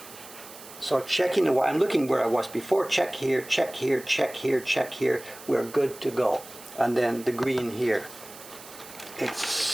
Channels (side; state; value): right; noise; hiss, 17 dB below the sound